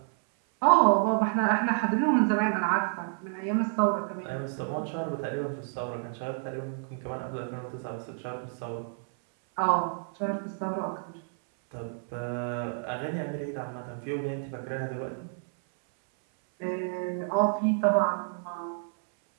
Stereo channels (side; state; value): left; silent; 58 dB below the other